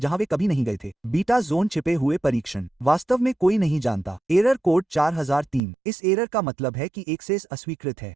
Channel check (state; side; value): drops out; left; at 5.6 s